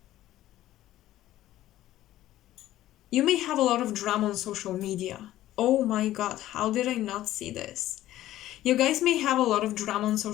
you may have a lot of drama on social media. Oh my god, how did I not see this? You guys may have a lot of drama on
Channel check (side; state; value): right; quieter; 14.2 dB